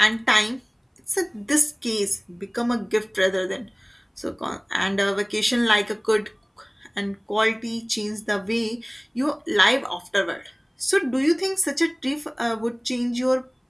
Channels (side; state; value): both; identical; correlation 1.00